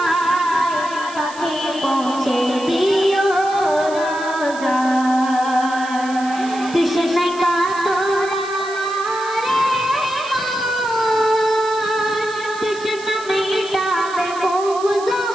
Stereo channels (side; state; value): right; noise; hiss, 17 dB below the sound